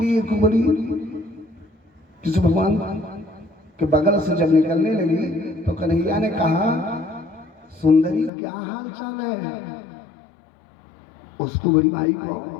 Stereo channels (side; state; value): right; drops out; at 8.3 s